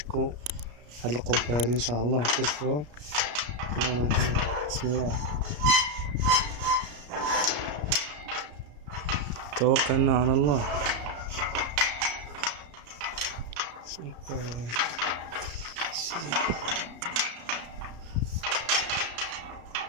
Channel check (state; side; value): late; left; 33 ms